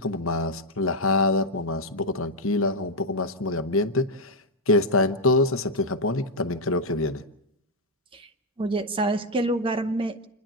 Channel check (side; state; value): both; normal; correlation 0.02